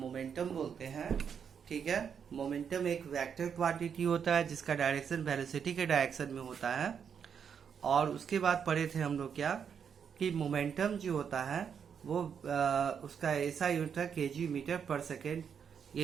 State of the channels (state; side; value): quieter; left; 7.3 dB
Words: बोलते हैं। ठीक है, मोमेंटम एक वेक्टर क्वांटिटी होता है जिसका डायरेक्शन वेलोसिटी के डायरेक्शन में होता है। और उसके बाद पढ़े थे हम लोग क्या, कि मोमेंटम जो होता है वो उसका ऐसा यूनिट है केजी मीटर पर सेकेंड,